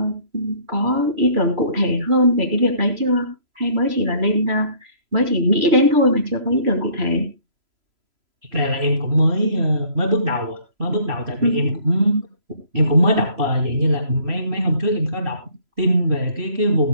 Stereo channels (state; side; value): late; left; 3.0 ms